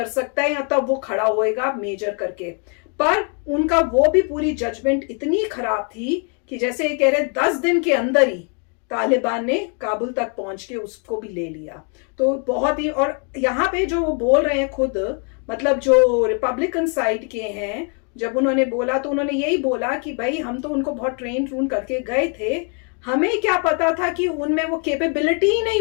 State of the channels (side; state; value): right; quieter; 39.9 dB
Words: सकता है या तब वो खड़ा होएगा मेजर करके। पर उनका वो भी पूरी जजमेंट इतनी खराब थी कि जैसे ये कह रहे 10 दिन के अंदर ही तालिबान ने काबुल तक पहुंच के उसको भी ले लिया। तो बहुत ही, और यहाँ पे जो वो बोल रहे हैं खुद, मतलब जो रिपब्लिकन साइड के हैं, जब उन्होंने बोला तो उन्होंने यही बोला कि भाई हम तो उनको बहुत ट्रेन करके गए थे, हमें क्या पता था कि उनमें वो कैपेबिलिटी ही नहीं